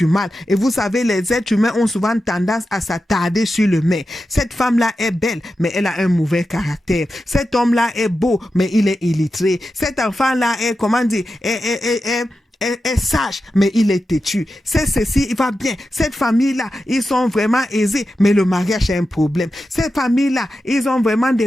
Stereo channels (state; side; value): normal; both; correlation 0.90